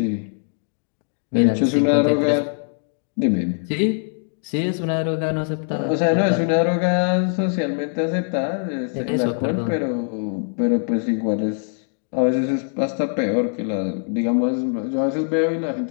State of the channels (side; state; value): right; silent; 64 dB below the other